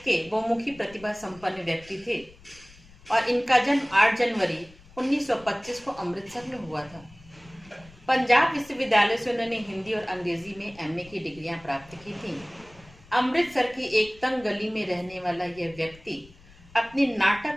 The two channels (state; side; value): noise; left; rumble, 24 dB below the sound